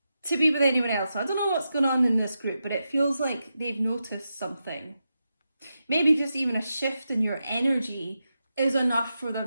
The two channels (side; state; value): both; inverted; correlation -0.88